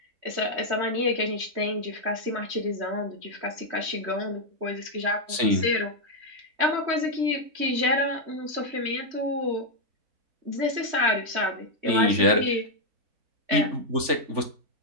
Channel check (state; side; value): late; left; 3.5 ms